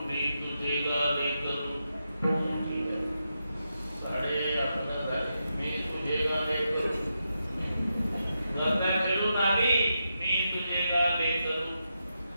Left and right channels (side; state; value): both; inverted; correlation -0.86